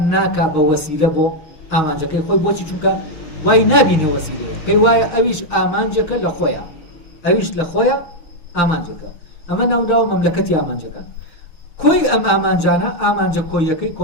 ناکا بە وەسیلە بۆ ئامانجەکەی خۆی. بۆچی؟ چونکە وای نابینێ وەسیلەیە، پێی وایە ئەویش ئامانجەکە لە خۆیە، ئەویش لە خۆیە ئامانجەکە. ئەمە ناوداوە مەملەکەتی ئامانجەکان. کۆی ئەم ئامانجانە ئامانجە کۆیەکەی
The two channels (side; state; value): right; late; 6.5 ms